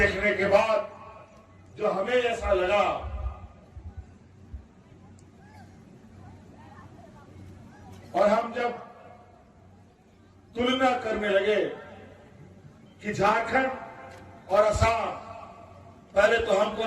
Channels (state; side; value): identical; both; correlation 1.00